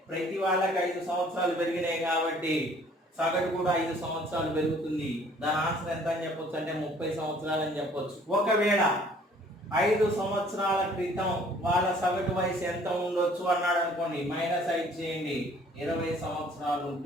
ప్రతి వాళ్ళకి 5 సంవత్సరాలు పెరిగినాయి కాబట్టి సగటు కూడా 5 సంవత్సరాలు పెరుగుతుంది. దాని ఆన్సర్ ఎంత అని చెప్పొచ్చు అంటే 30 సంవత్సరాలు అని చెప్పొచ్చు. ఒకవేళ 5 సంవత్సరాల క్రితం వాళ్ళ సగటు వయసు ఎంత ఉండొచ్చు అన్నాడు అనుకోండి. -5 చేయండి, 20 సంవత్సరాలు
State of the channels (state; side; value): normal; both; correlation 0.56